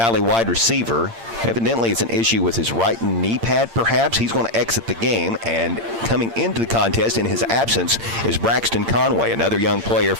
wide receiver, evidently it's an issue with his right knee pad, perhaps. He's going to exit the game, and coming into the contest in his absence is Braxton Conway, another young player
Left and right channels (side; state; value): left; late; 8.8 ms